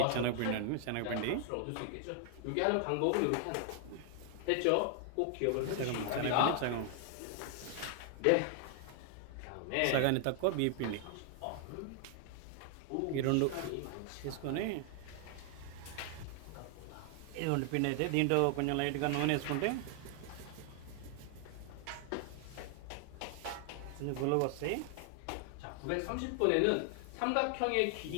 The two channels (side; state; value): both; different; correlation 0.00